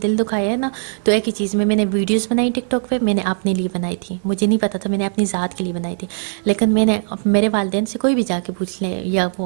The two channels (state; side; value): silent; left; 58 dB below the other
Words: دکھایا ہے نا, تو ایک ہی چیز میں نے ویڈیوز بنائی ٹک ٹاک پہ, میں نے اپنے لیے بنائی تھی, مجھے نہیں پتا تھا, میں نے اپنی ذات کے لیے بنائی تھی. لیکن میں نے میرے والدین سے کوئی بھی جا کے پوچھ لے, یا